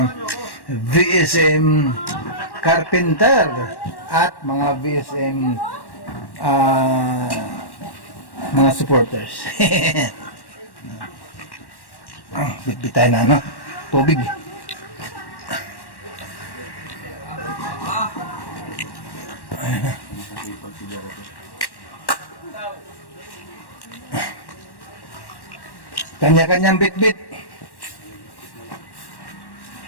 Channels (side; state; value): right; late; 1.1 ms